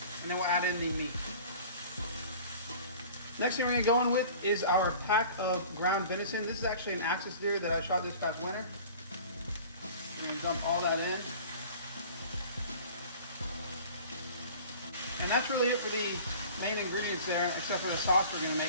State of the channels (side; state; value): both; inverted; correlation -0.43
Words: then we'll add in the meat. Next thing we're going to go in with is our pack of ground venison. This is actually an axis deer that I shot this past winter. We're going to dump all that in. And that's really it for the main ingredients there, except for the sauce we're going to